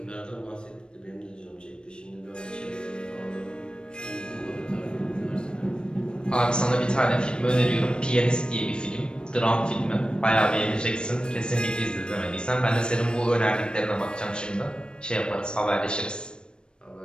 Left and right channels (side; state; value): right; late; 0.052 ms